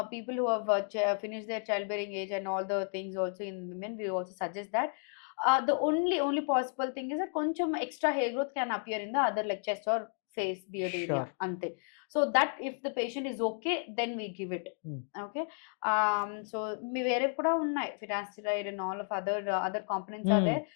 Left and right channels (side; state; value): right; silent; 56 dB below the other